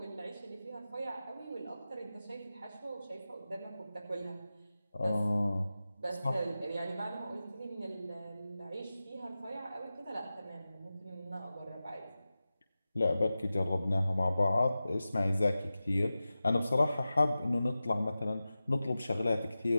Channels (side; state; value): both; inverted; correlation -0.94